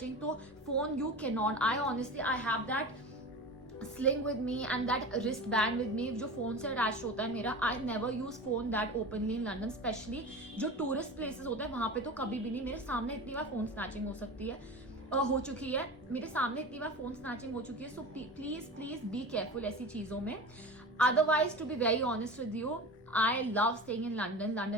तो phone you cannot. I honestly I have that sling with me and that wristband with me जो phone से अटैच होता है मेरा. I never use phone that openly in London, especially जो tourist places होते हैं वहां पे तो कभी भी नहीं. मेरे सामने इतनी बार फोन स्नैचिंग हो सकती है, हो चुकी है मेरे सामने इतनी बार फोन स्नैचिंग हो चुकी है. So please please be careful ऐसी चीजों में. Otherwise, to be very honest with you, I love staying in London.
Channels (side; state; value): both; normal; correlation 0.31